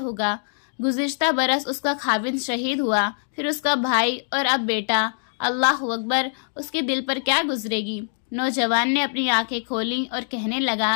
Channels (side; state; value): right; silent; digital silence